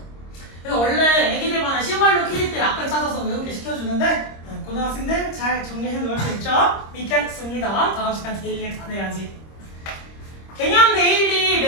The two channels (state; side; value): late; right; 26 ms